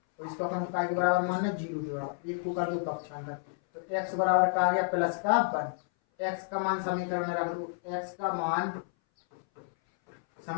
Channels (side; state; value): right; silent; 57 dB below the other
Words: तो इसको अपन काय के बराबर मानना 0 के बराबर, एक को कर दो पक्षांतर, तो x बराबर का आ गया प्लस का 1। x का मान समीकरण में रख दो, x का मान